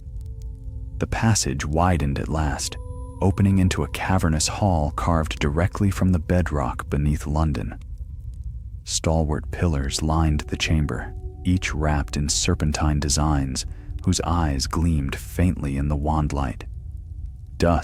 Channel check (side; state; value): both; identical; correlation 1.00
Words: The passage widened at last, opening into a cavernous hall carved directly from the bedrock beneath London. Stalwart pillars lined the chamber, each wrapped in serpentine designs whose eyes gleamed faintly in the wand light.